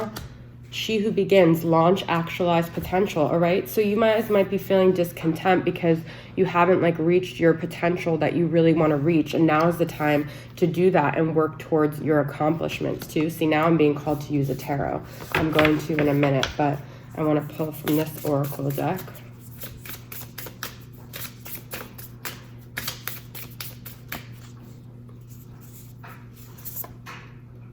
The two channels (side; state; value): both; identical; correlation 1.00